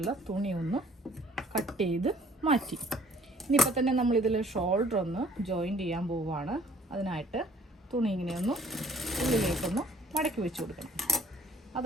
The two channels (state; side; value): normal; both; correlation 0.56